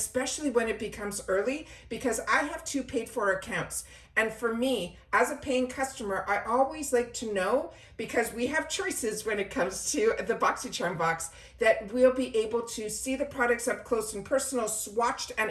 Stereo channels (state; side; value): identical; both; correlation 1.00